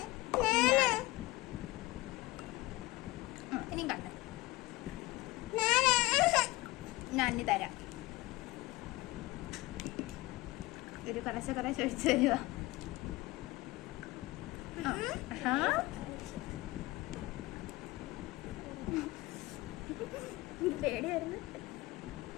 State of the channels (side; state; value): right; quieter; 19.8 dB